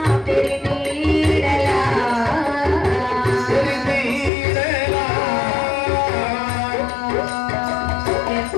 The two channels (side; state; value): right; drops out; at 4.3 s